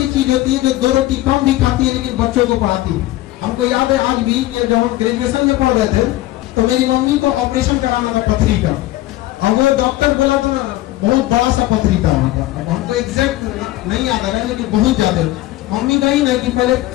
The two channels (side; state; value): right; quieter; 16.5 dB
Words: चीज होती है जो 2 रोटी कम भी खाती है लेकिन बच्चों को पढ़ाती है। हमको याद है आज भी कि जब हम ग्रेजुएशन में पढ़ रहे थे तो मेरी मम्मी को ऑपरेशन कराना था पथरी का, और वो डॉक्टर बोला था बहुत बड़ा सा पथरी था वहाँ का। अब हमको एग्जैक्ट नहीं याद आ रहा है लेकिन बहुत ज्यादा। मम्मी कही ना कि पहले